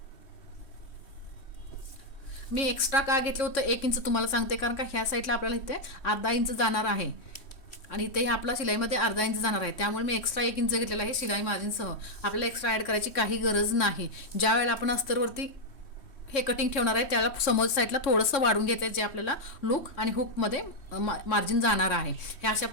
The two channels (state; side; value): late; right; 3.1 ms